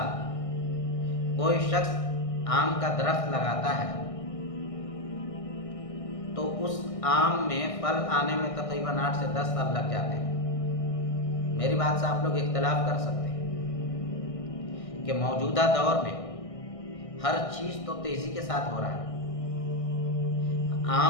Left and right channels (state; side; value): late; right; 1.6 ms